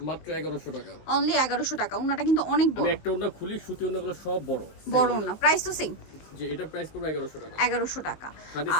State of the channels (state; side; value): late; right; 19 ms